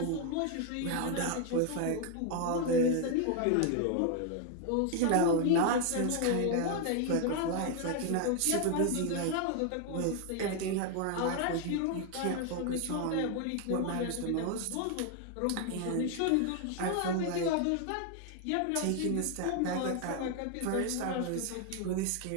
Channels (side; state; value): both; different; correlation 0.01